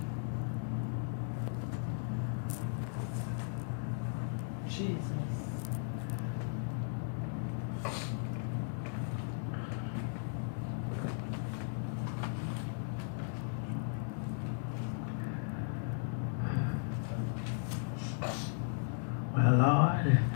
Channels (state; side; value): silent; right; digital silence